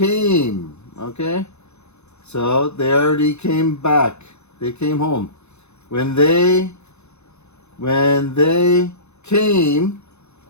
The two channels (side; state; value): right; late; 0.81 ms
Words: Okay. So they already came back. They came home. When they came